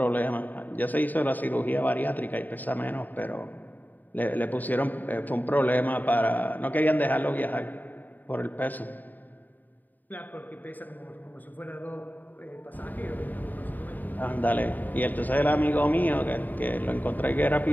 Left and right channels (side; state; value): right; late; 0.086 ms